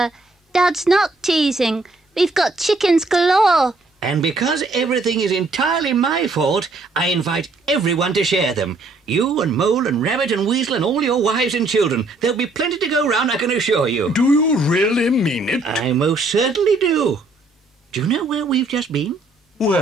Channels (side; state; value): left; quieter; 3.2 dB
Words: Dad's not teasing. We've got chickens galore. And because everything is entirely my fault, I invite everyone to share them. You and Mole and Rabbit and Weasel and all your wives and children. There'll be plenty to go round, I can assure you. Do you really mean it? I most certainly do. Do you know where we've just been?